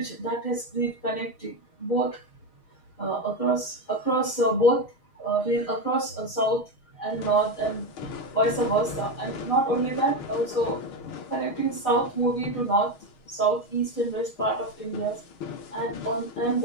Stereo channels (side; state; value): right; late; 6.4 ms